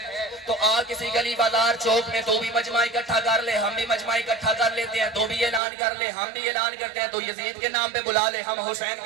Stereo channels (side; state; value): left; drops out; at 5.6 s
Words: تو آ کسی گلی بازار چوک میں تو بھی مجمع اکٹھا کر لے، ہم بھی مجمع اکٹھا کر لیتے ہیں، تو بھی اعلان کر لے، ہم بھی اعلان کرتے ہیں، تو یزید کے نام پہ بلا لے، ہم حسین